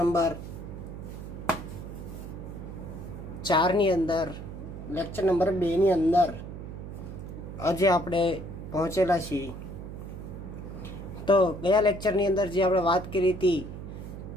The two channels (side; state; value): right; noise; hum, 10 dB below the sound